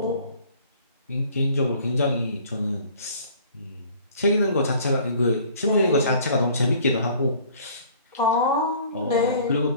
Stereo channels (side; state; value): both; inverted; correlation -0.52